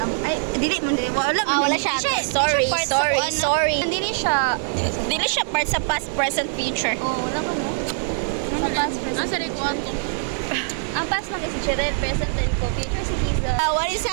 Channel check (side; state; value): left; silent; digital silence